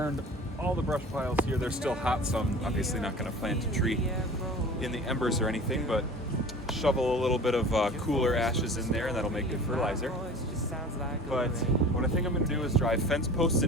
all the brush piles here. They're still hot, so I'm obviously not going to plant a tree in the embers or anything, but shovel a little bit of cooler ashes in there, and that'll make good fertilizer. But what I think I'm going to do is drive fence posts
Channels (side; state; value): both; normal; correlation 0.41